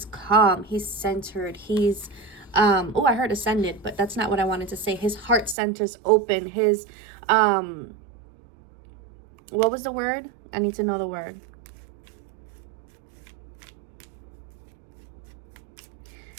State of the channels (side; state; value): left; drops out; at 5.6 s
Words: calm, he's centered, he's oh, I heard ascended, but that's not what I wanted to say. His heart center's open. His what was the word? I need to know the word.